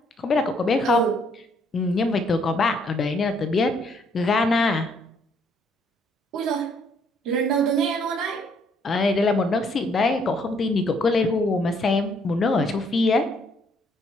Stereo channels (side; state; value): both; normal; correlation 0.67